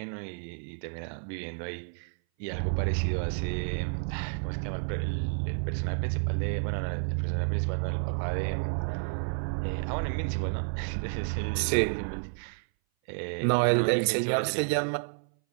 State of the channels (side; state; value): left; silent; 58 dB below the other